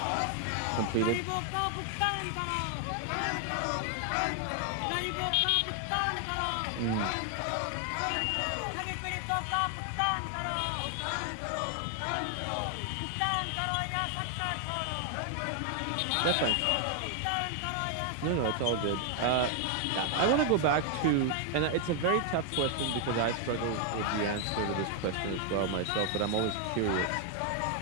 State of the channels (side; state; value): both; different; correlation 0.00